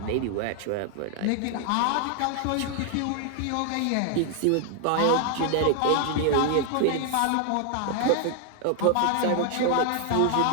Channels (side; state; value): both; different; correlation 0.00